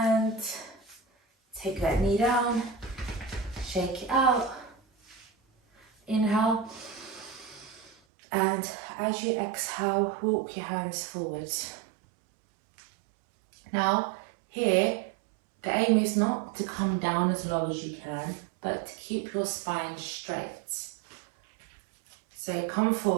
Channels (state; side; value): drops out; left; at 8.0 s